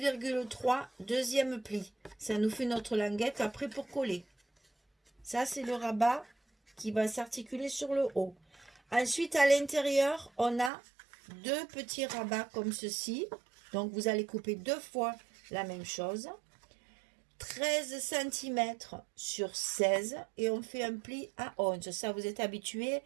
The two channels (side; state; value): left; drops out; at 10.7 s